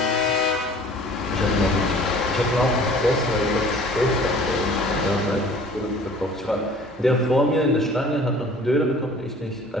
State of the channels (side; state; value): both; normal; correlation 0.49